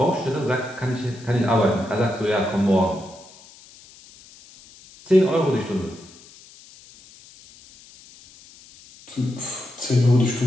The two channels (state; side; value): noise; left; hiss, 23 dB below the sound